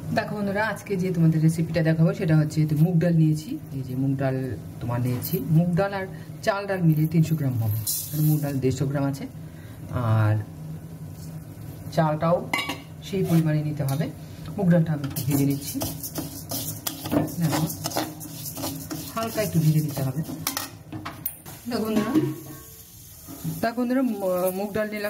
দেখো বন্ধুরা, আজকে যে তোমাদের রেসিপিটা দেখাবো সেটা হচ্ছে মুগ ডাল নিয়েছি। এই যে মুগ ডাল তোমার নিয়েছি, মুগ ডাল আর চাল ডাল মিলিয়ে 300 গ্রাম হবে। মুগ ডাল 150 গ্রাম আছে, আর চালটাও সেই পরিমাণে নিতে হবে। মুগ ডালটা আমি একটু ভেজে নিচ্ছি, দেখো হালকা একটু ভেজে নিতে হবে। দেখো বন্ধুরা, মুগ ডাল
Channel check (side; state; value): both; identical; correlation 1.00